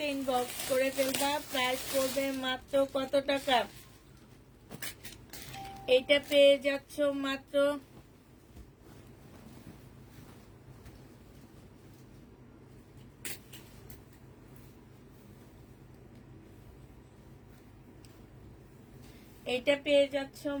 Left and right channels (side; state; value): both; identical; correlation 1.00